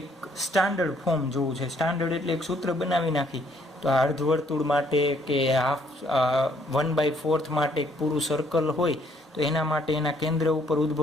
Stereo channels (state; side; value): normal; both; correlation 0.66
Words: સ્ટાન્ડર્ડ ફોર્મ જોવું છે. સ્ટાન્ડર્ડ એટલે એક સૂત્ર બનાવી નાખી. તો આ અર્ધવર્તુળ માટે કે હાફ 1/4 માટે એક પૂરું સર્કલ હોય તો એના માટે એના કેન્દ્ર ઉપર